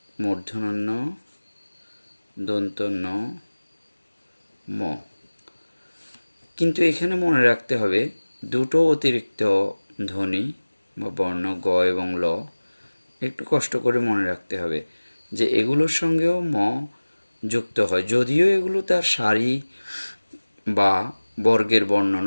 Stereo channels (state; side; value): inverted; both; correlation -1.00